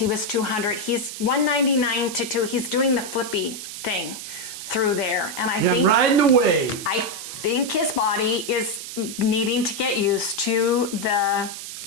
was 200. He's 199 to 2. He's doing the flippy thing through there, and I think riding the wave. I think his body is needing to get used to the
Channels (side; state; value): right; noise; hiss, 9 dB below the sound